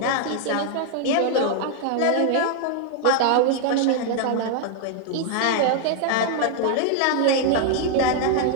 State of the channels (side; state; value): both; different; correlation 0.00